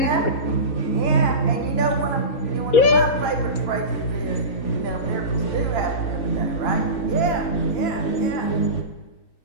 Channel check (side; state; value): right; late; 4.1 ms